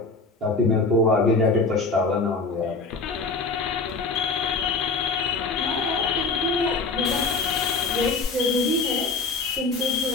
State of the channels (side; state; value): right; quieter; 3.9 dB